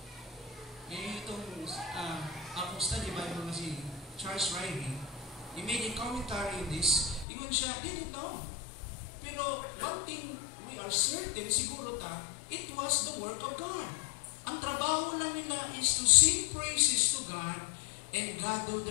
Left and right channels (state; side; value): drops out; right; at 7.2 s